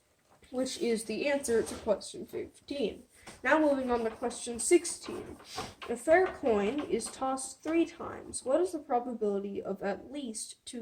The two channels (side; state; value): both; identical; correlation 1.00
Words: Which is the answer to question 15. Now moving on to question 16. A fair coin is tossed 3 times. What is the probability of at least 2